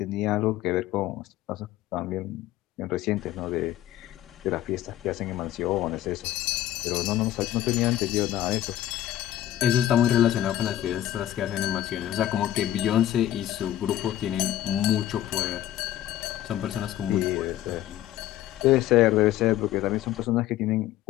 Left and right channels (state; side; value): quieter; right; 13.0 dB